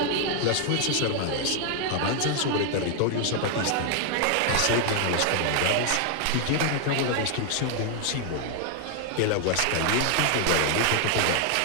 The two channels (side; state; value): both; different; correlation 0.00